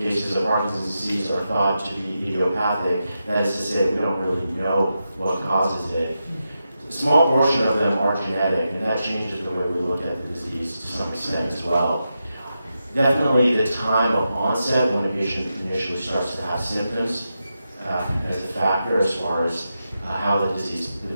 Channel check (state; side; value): inverted; both; correlation -0.88